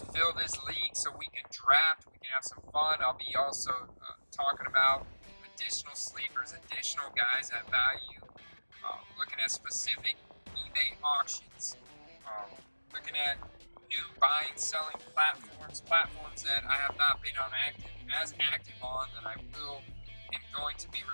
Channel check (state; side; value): inverted; both; correlation -1.00